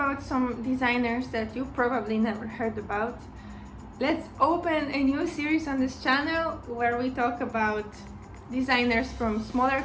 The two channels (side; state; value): both; identical; correlation 1.00